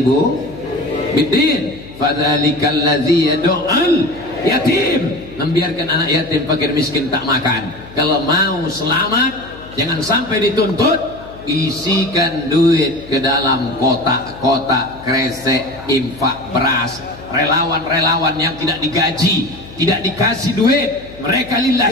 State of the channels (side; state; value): left; noise; hum, 19 dB below the sound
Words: biddin fadzalikal ladzi yad'ul yatim. Membiarkan anak yatim fakir miskin tak makan. Kalau mau selamat, jangan sampai dituntut, isikan duit ke dalam kotak-kotak kresek infak beras. Relawan-relawan yang tidak digaji, tidak dikasih duit, mereka